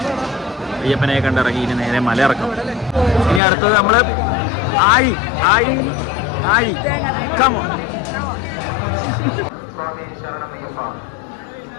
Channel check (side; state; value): right; drops out; at 3.4 s